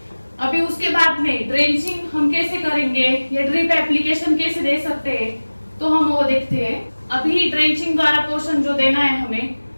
अभी उसके बाद में ड्रेंचिंग हम कैसे करेंगे या ड्रिप एप्लीकेशन कैसे दे सकते हैं, तो हम वो देखते हैं। अभी ड्रेंचिंग द्वारा पोषण जो देना है हमें,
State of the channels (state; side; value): inverted; both; correlation -1.00